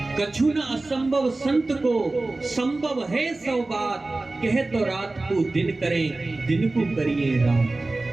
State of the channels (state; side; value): quieter; left; 3.1 dB